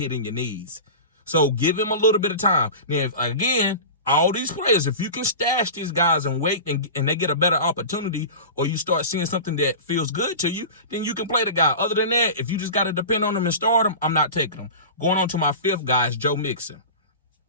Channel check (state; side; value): inverted; both; correlation -0.31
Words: in your knees. So give him a little bit of time. Now, again, all these players, if you can stash these guys and wait and they get a better opportunity, or you start seeing something that feels good to you, then you can play the guy. Other than that, if you just got to depend on them and start them, I'm not taking them. Going on to my fifth guy is Joe Mixon.